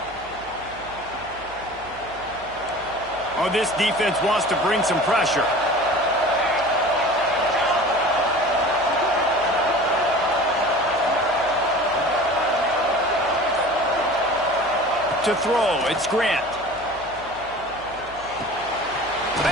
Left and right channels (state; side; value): noise; right; hum, 21 dB below the sound